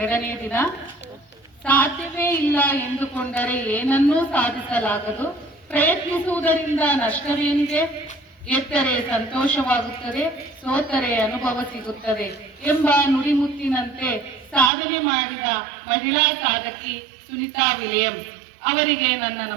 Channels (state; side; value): drops out; left; at 14.7 s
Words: ದಿನ. ಸಾಧ್ಯವೇ ಇಲ್ಲ ಎಂದುಕೊಂಡರೆ ಏನನ್ನೂ ಸಾಧಿಸಲಾಗದು, ಪ್ರಯತ್ನಿಸುವುದರಿಂದ ನಷ್ಟವೇನಿದೆ, ಗೆದ್ದರೆ ಸಂತೋಷವಾಗುತ್ತದೆ, ಸೋತರೆ ಅನುಭವ ಸಿಗುತ್ತದೆ ಎಂಬ ನುಡಿಮುತ್ತಿನಂತೆ ಸಾಧನೆ ಮಾಡಿದ ಮಹಿಳಾ ಸಾಧಕಿ ಸುನಿತಾ ವಿಲಿಯಮ್ಸ್ ಅವರಿಗೆ ನನ್ನ